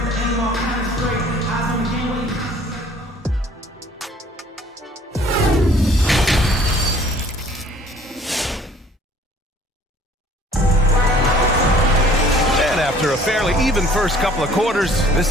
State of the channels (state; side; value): normal; both; correlation 0.54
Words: After a fairly even first couple of quarters, this